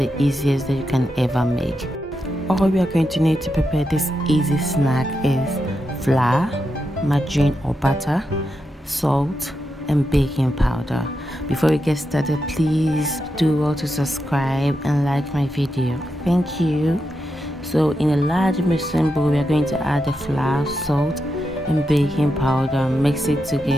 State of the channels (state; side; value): normal; both; correlation 0.86